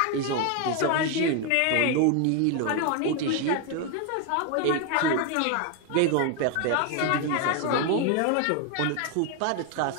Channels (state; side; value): different; both; correlation 0.01